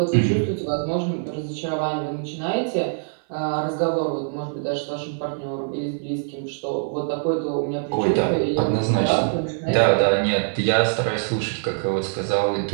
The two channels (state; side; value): silent; left; 57 dB below the other